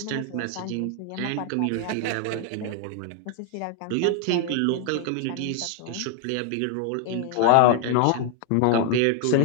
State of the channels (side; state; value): both; different; correlation 0.00